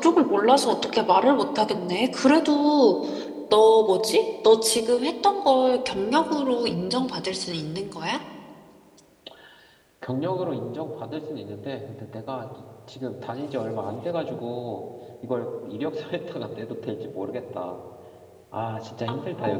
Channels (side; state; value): both; identical; correlation 1.00